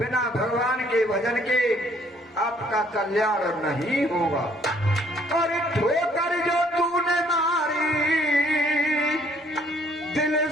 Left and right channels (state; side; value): normal; both; correlation 0.63